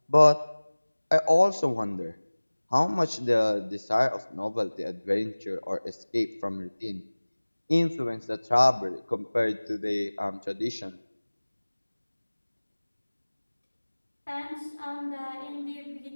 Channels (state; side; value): inverted; both; correlation -1.00